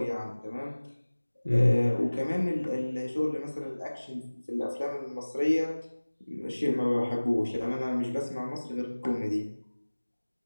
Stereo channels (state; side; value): inverted; both; correlation -1.00